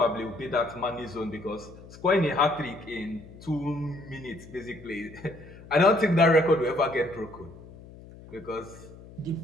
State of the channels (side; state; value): left; noise; hum, 18 dB below the sound